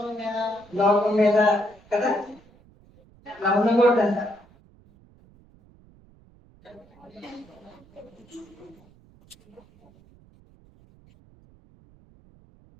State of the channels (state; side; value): noise; right; rumble, 28 dB below the sound